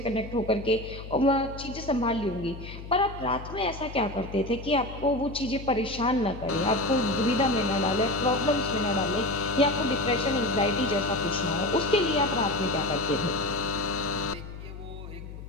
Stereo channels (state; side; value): noise; left; hum, 12 dB below the sound